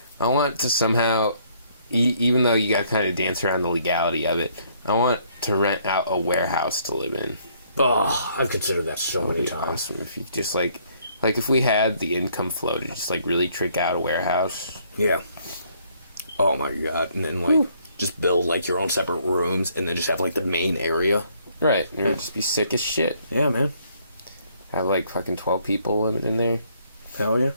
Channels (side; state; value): both; inverted; correlation -0.66